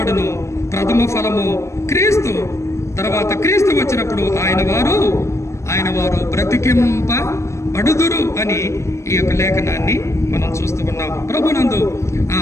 ప్రథమ ఫలము క్రీస్తు. తర్వాత క్రీస్తు వచ్చినప్పుడు ఆయన వారు బ్రతికింపబడుదురు అని ఈ యొక్క లేఖనాన్ని మనం చూస్తూ ఉన్నాం. ప్రభునందు ఆ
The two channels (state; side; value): late; right; 0.14 ms